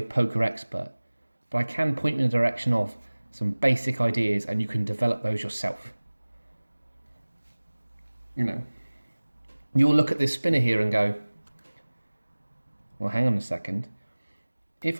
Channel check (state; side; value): inverted; both; correlation -1.00